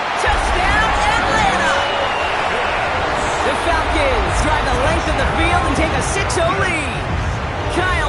Touchdown, Atlanta. The Falcons drive the length of the field and take a 6-0 lead.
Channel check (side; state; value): both; identical; correlation 1.00